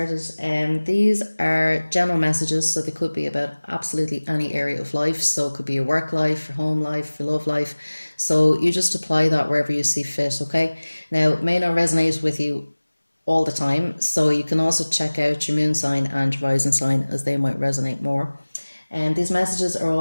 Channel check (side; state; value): both; inverted; correlation -1.00